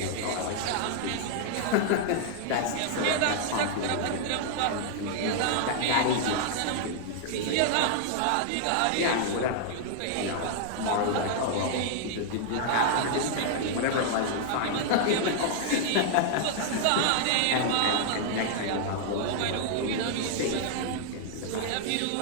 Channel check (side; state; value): both; different; correlation -0.01